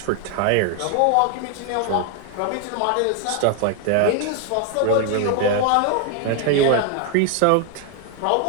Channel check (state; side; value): different; both; correlation 0.01